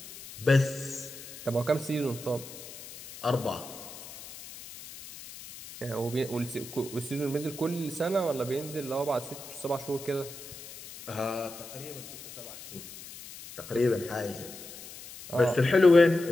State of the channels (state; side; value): noise; left; hiss, 14 dB below the sound